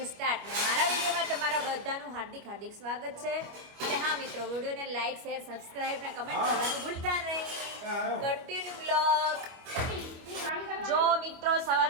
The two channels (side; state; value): left; late; 25 ms